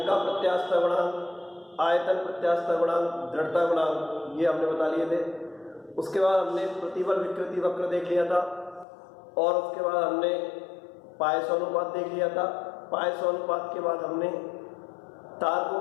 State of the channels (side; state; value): right; drops out; at 8.8 s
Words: का प्रत्यास्थता गुणांक, आयतन प्रत्यास्थता गुणांक, दृढ़ता गुणांक, ये हमने बता लिए थे। उसके बाद हमने प्रतिबल विकृति वक्र देख लिया था और उसके बाद हमने पायसो अनुपात देख लिया था। पायसो अनुपात के बाद हमने तार को